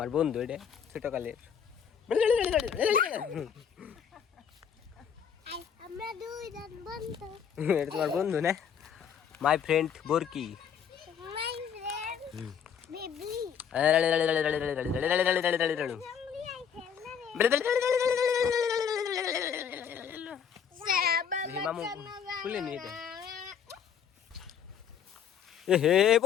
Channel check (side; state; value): right; quieter; 7.8 dB